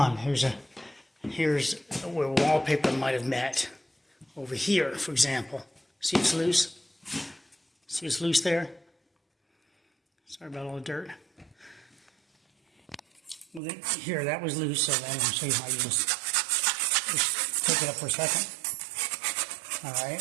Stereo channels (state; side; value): drops out; left; at 13.6 s